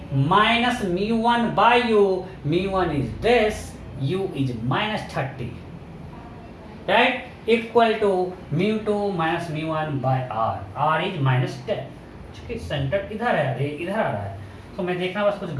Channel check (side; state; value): both; identical; correlation 1.00